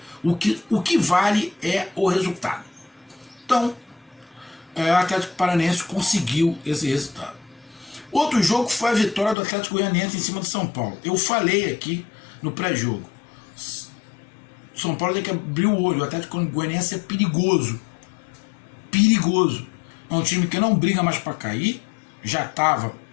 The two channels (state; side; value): drops out; right; at 9.3 s